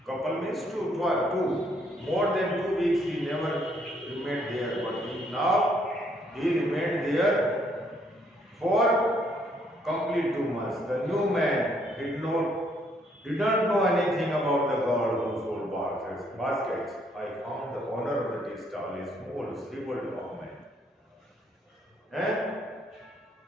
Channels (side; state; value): both; normal; correlation 0.69